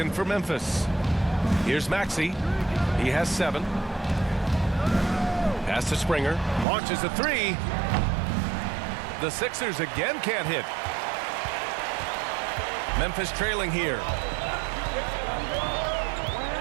for Memphis. Here's Maxey. He has 7. Pass to Springer. Launches a 3. The Sixers again can't hit. Memphis trailing here.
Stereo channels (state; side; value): drops out; left; at 6.7 s